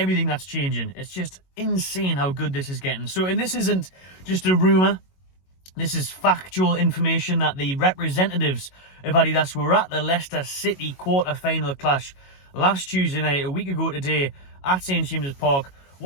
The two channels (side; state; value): right; late; 22 ms